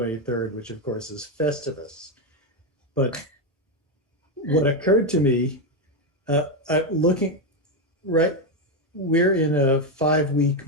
which of course is Festivus. But what occurred to me, looking right, we're in a 5-week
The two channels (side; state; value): both; normal; correlation 0.07